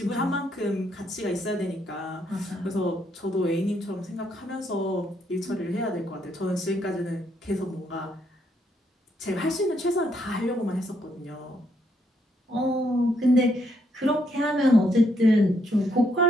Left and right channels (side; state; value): both; normal; correlation 0.74